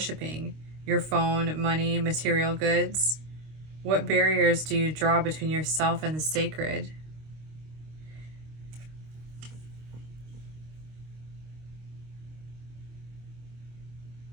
Your phone, money, material goods? What barriers do you draw between yourself and the sacred?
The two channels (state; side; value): late; left; 26 ms